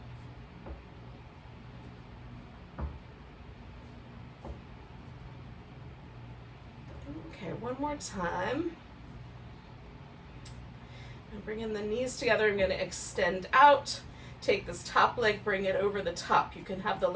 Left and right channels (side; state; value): both; identical; correlation 1.00